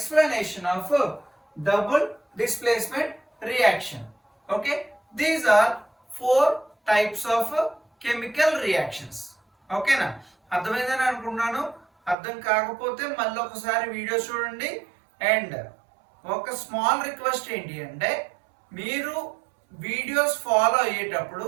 of double displacement reaction. Okay, these are 4 types of chemical reactions. Okay na, అర్థమైందని అనుకుంటున్నాను. అర్థం కాకపోతే మళ్ళీ ఒకసారి వీడియో చూడండి. అండ్ ఒక స్మాల్ రిక్వెస్ట్ ఏంటి అంటే మీరు వీడియోస్ ఫాలో అయ్యేటప్పుడు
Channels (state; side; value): drops out; left; at 12.2 s